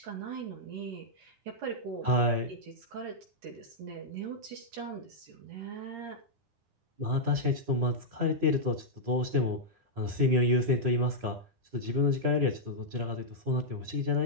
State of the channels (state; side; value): late; left; 9.9 ms